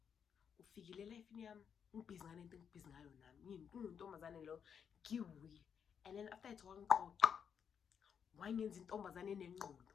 ufikile lifeini yami ngibhizi ngane into ngibhizi ngayo nami ngintombazane lo ngiwi and then after it wangiqoqa wangenza intombazane enengqondo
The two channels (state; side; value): quieter; right; 7.4 dB